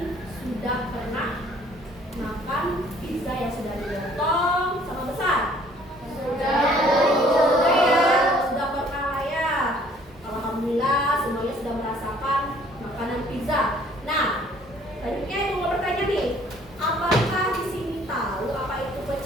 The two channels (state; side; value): normal; both; correlation 0.58